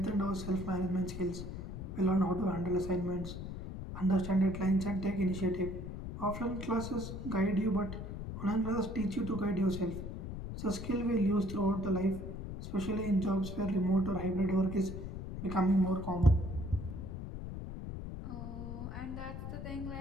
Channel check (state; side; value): noise; left; rumble, 7 dB below the sound